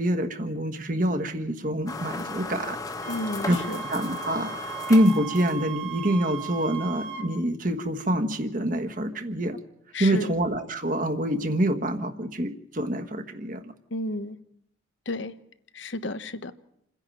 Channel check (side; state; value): both; normal; correlation 0.60